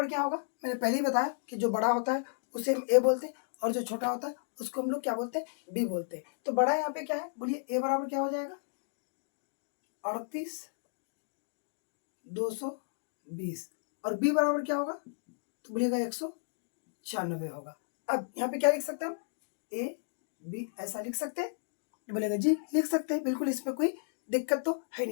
क्या होगा, मैंने पहले ही बताया कि जो बड़ा होता है उसे हम ए बोलते हैं और जो छोटा होता है उसको हम लोग क्या बोलते हैं, बी बोलते हैं। तो बड़ा यहाँ पे क्या है, बोलिए ए बराबर क्या हो जाएगा 38,220 और बी बराबर क्या होगा तो बोलिएगा 196। 96 होगा। अब यहाँ पे क्या लिख सकते हैं हम, ए बी ऐसा लिख सकते हैं, तो बोलेगा जी लिख सकते हैं, बिल्कुल इसमें कोई दिक्कत तो है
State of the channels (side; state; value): right; silent; digital silence